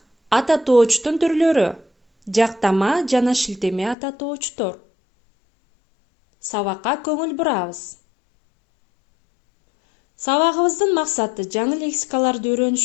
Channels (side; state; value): right; drops out; at 4.0 s